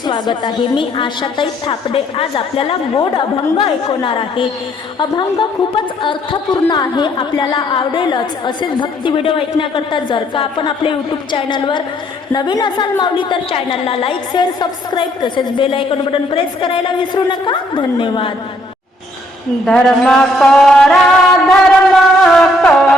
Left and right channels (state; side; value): normal; both; correlation 0.67